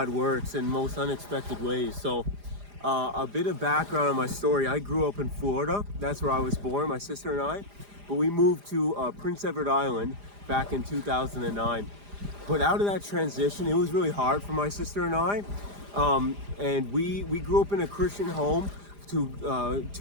works in most unexpected ways. So a bit of background on my story. I grew up in Florida. That's where I was born, my sister and I. But we moved to Prince Edward Island back in 2009. But out of that transition, it was really hard for my sister and I. And we grew up in a Christian home to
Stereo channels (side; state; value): left; late; 4.9 ms